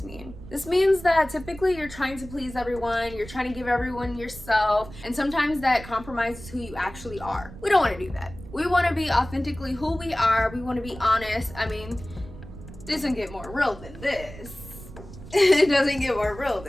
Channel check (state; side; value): noise; right; rumble, 15 dB below the sound